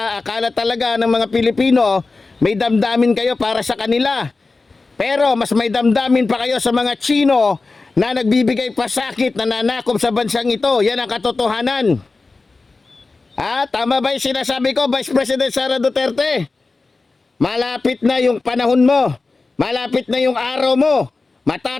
talaga ng mga Pilipino may damdamin kayo para sa kanila. Pero mas may damdamin pa kayo sa mga Chino na nagbibigay pasakit, na nanakop sa bansang ito. Yan ang katotohanan. Tama ba yung sinasabi ko, Vice President Sara Duterte? Malapit na yung panahon mo. Malapit na yung araw mo.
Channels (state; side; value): quieter; right; 3.8 dB